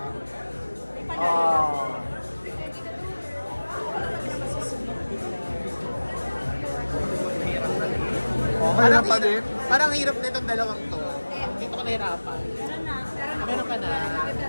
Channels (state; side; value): inverted; both; correlation -1.00